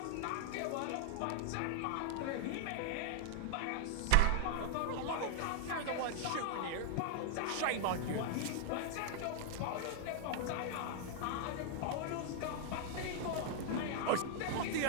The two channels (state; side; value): different; both; correlation 0.00